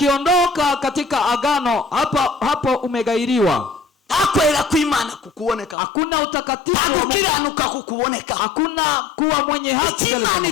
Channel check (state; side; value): drops out; right; at 5.8 s